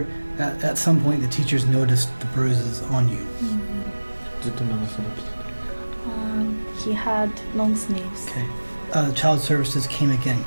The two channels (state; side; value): inverted; both; correlation -1.00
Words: at some point the teachers noticed the bruises on you. ずっと長袖着てた。 He had long sleeves. Okay. Child services came again,